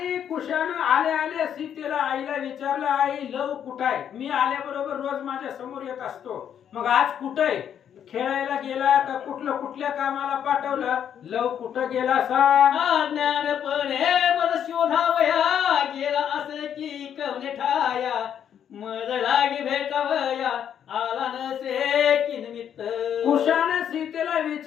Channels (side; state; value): right; quieter; 9.0 dB